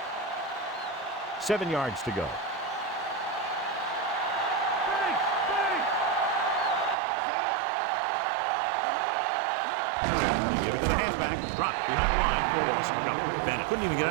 Seven yards to go. Give it to the halfback. Dropped behind the line for a loss of a couple. Bennett couldn't even get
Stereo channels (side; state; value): left; drops out; at 7.0 s